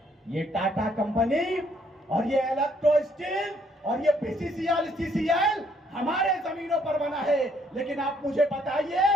ये टाटा कंपनी और ये इलेक्ट्रो स्टील और ये बीसीसीएल, सीसीएल हमारे जमीनों पर बना है। लेकिन आप मुझे बताइए,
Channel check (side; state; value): both; normal; correlation 0.68